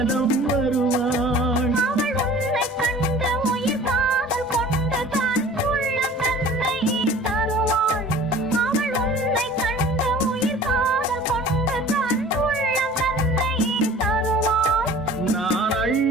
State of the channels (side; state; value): both; normal; correlation 0.45